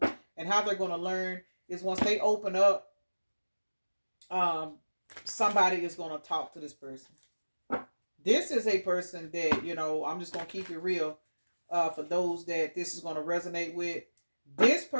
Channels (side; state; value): both; inverted; correlation -1.00